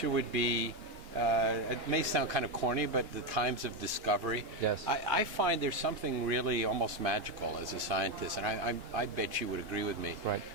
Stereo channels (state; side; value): late; left; 2.9 ms